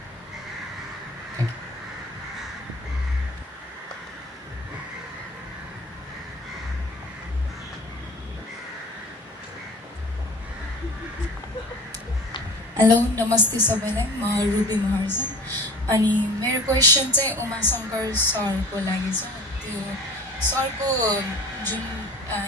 हेलो नमस्ते सबैलाई, म रुबी महार्जन। अनि मेरो क्वेसन चाहिँ उमा शङ्कर सरको लागि छ। त्यो सरको जुन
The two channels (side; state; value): both; normal; correlation 0.42